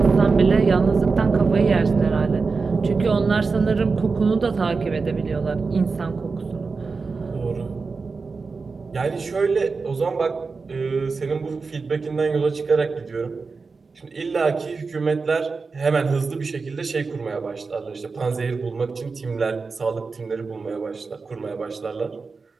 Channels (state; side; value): quieter; left; 4.5 dB